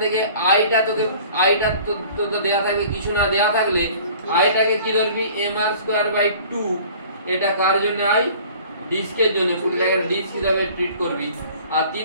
থেকে i-টা তো দেয়া থাকবে, কিছু না দেয়া থাকলে i-টাকে কি ধরবি? mr²/2। এটা কার জন্য? i ডিস্কের জন্য। পুরোটাকে ডিস্ক হিসাবে ট্রিট করবি। আর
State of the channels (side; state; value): both; inverted; correlation -0.48